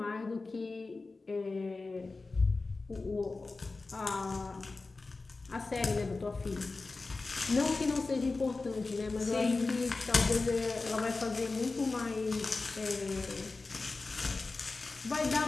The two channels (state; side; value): quieter; right; 3.7 dB